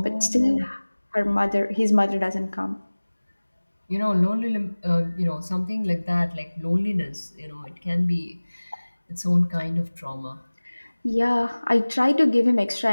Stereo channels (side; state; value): both; inverted; correlation -1.00